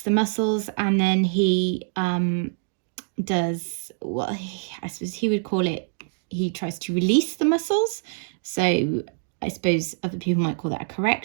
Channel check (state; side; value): silent; left; digital silence